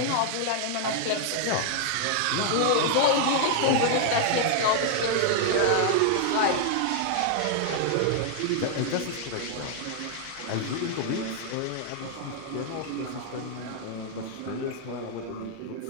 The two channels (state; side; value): different; both; correlation 0.00